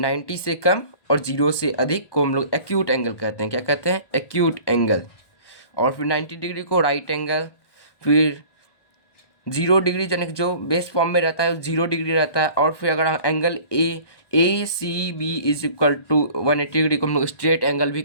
से कम और 0 से अधिक को हम लोग एक्यूट एंगल कहते हैं। क्या कहते हैं? Acute angle. और फिर 90 डिग्री को राइट एंगल। फिर 0 डिग्री यानी कि जो बेस फॉर्म में रहता है 0 डिग्री रहता है। और फिर अगर angle A C B is equal to 180 degree को हम लोग स्ट्रेट एंगल भी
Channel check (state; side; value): late; right; 1.2 ms